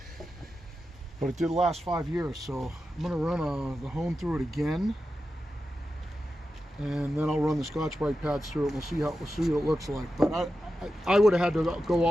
But it did last 5 years, so I'm going to run the hone through it again, and then I'll run the Scotch-Brite pads through it. We'll see what it looks like. But I would have had to go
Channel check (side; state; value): both; normal; correlation 0.91